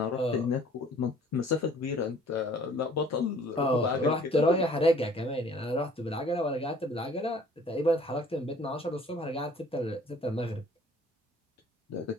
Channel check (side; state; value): both; normal; correlation 0.54